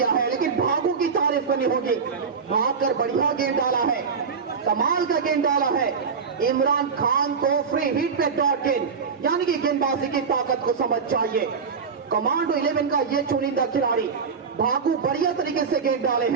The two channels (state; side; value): quieter; left; 5.7 dB